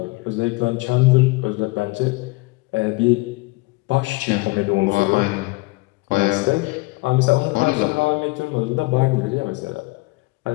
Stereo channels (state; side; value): quieter; right; 24.3 dB